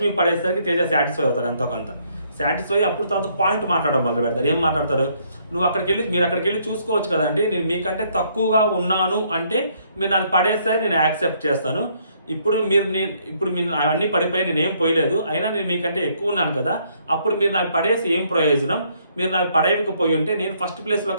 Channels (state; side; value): inverted; both; correlation -0.68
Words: పడేసరికి తేజ సాటిస్ఫై అవుతాడు ఎంతో కొంత. సాటిస్ఫై అప్పుడు తర్వాత పాయింట్ మాట్లాడడం మొదలు పెడతారు. ఏం మాట్లాడతారు, మీరు అక్కడికి వెళ్ళి చూసుకోవచ్చు కదండి, నేను మీకంటే తక్కువగా ఉన్నాను అంటే మీరు నన్ను పడేస్తే నేను యాక్సెప్ట్ చేస్తాను. ఇప్పుడు మీరు అవన్నీ పడిపోయి నేనేం పోయలేదు, అయినా నేను మీకంటే ఎక్కువ ఉన్నాను కదా, అప్పుడు మీరు నాకు పడేసి ఏం ప్రయోజనం, మీరు నాకు పడేయకపోయి ఉంటే నేను ఫస్ట్ ప్లేస్లో